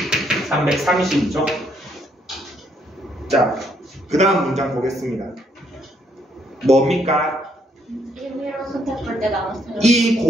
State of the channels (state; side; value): normal; both; correlation 0.71